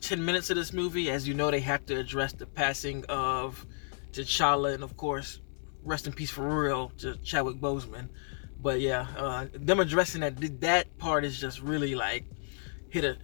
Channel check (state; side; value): silent; right; 57 dB below the other